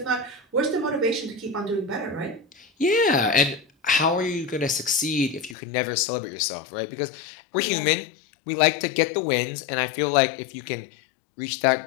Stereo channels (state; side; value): drops out; right; at 5.6 s